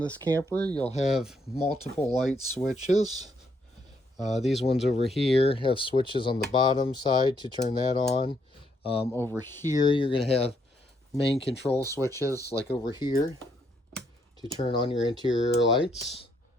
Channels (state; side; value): normal; both; correlation 0.73